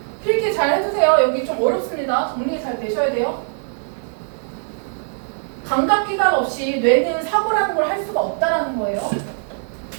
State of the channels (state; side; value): silent; left; digital silence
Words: 필기 잘 해주세요. 여기 좀 어렵습니다. 정리 잘 되셔야 돼요. 감각기관 없이 뇌는 사고라는 걸 할 수가 없다라는 거예요.